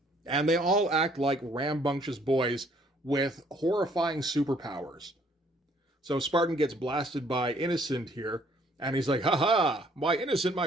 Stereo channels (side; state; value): both; normal; correlation 0.63